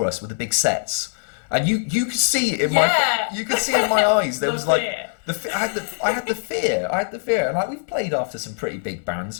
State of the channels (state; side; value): silent; right; digital silence